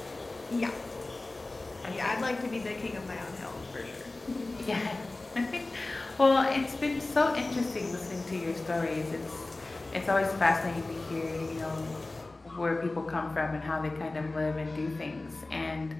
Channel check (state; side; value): quieter; right; 3.1 dB